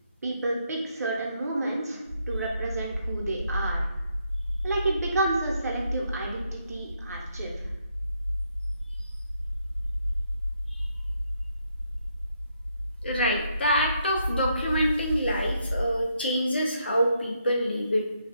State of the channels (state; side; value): inverted; both; correlation -0.76